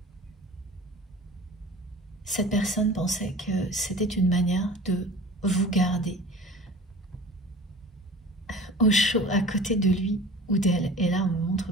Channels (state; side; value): normal; both; correlation 0.40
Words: cette personne pensait que c'était une manière de vous garder au chaud à côté de lui ou d'elle. Et là, on me montre